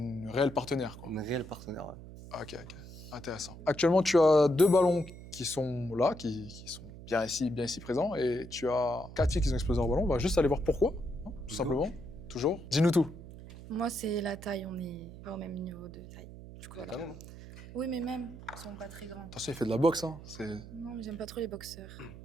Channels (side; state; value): right; noise; hum, 15 dB below the sound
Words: réelle partenaire, quoi. Une réelle partenaire, ouais. Ok, intéressant. Actuellement, tu as 2 ballons qui sont là, qui sont bien ici présents, et tu as 4 filles qui ont explosé leur ballon. On va juste aller voir pourquoi, hein, tout simplement. Toujours. Dis-nous tout. Moi, c'est la taille, on est pas au même niveau de taille. Du coup, voilà. Oui, mais même, ils sont pas très grands. Attention, il fait de la boxe, hein. Non, mais j'aime pas trop les boxeurs.